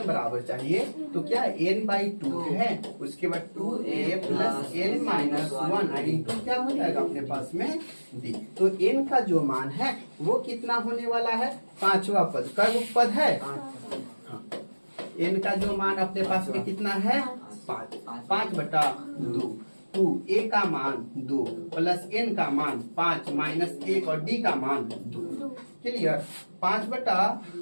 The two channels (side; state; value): both; inverted; correlation -1.00